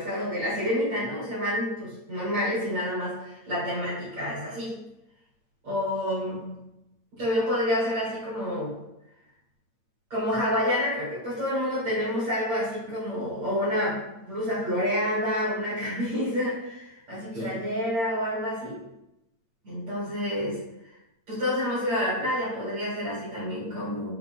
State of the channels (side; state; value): left; late; 8.8 ms